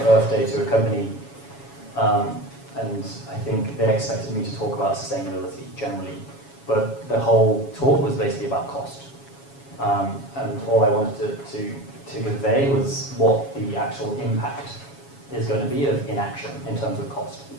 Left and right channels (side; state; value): right; late; 7.2 ms